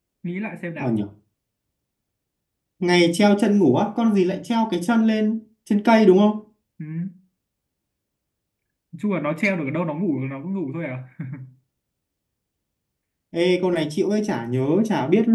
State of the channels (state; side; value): identical; both; correlation 1.00